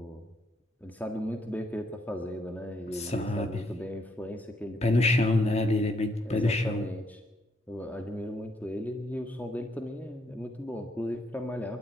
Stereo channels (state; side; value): normal; both; correlation 0.73